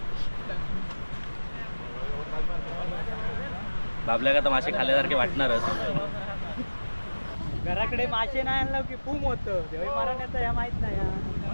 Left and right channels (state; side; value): inverted; both; correlation -1.00